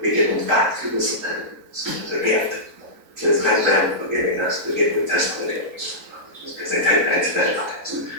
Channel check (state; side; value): late; left; 3.9 ms